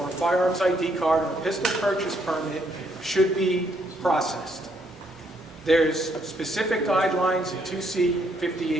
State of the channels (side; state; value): both; normal; correlation 0.72